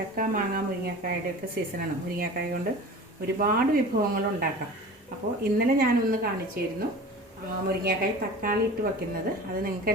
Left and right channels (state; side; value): normal; both; correlation 0.37